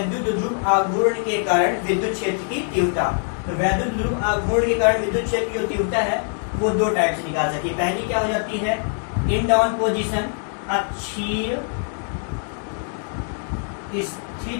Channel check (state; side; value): silent; right; 58 dB below the other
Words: ध्रुव आघूर्ण के कारण विद्युत क्षेत्र की तीव्रता, तो विद्युत ध्रुव आघूर्ण के कारण विद्युत क्षेत्र की जो तीव्रता है वो 2 टाइप से निकाल सकती है। पहली क्या हो जाती है, इन डाउन पोजिशन, अक्षीय